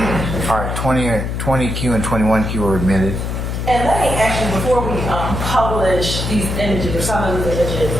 All right, 20Q and 21Q are admitted. And let me actually, before we publish these images, or some of these images,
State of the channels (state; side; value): noise; left; hum, 3 dB below the sound